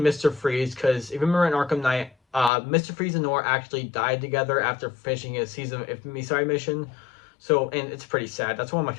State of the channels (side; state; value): right; drops out; at 2.5 s